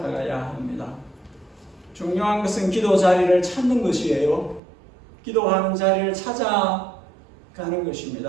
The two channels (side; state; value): left; drops out; at 4.6 s